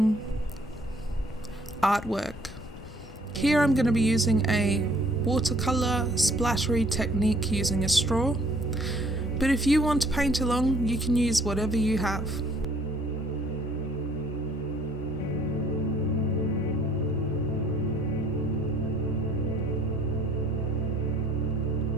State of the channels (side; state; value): both; normal; correlation 0.60